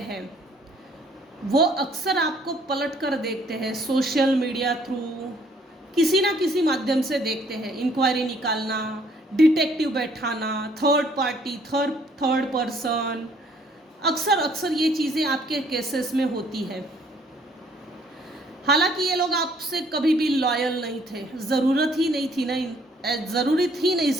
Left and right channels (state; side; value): normal; both; correlation 0.63